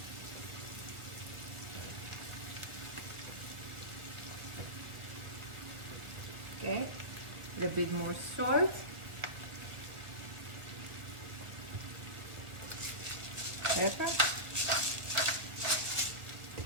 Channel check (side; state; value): left; late; 1.6 ms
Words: Okay, a little bit more salt. Pepper.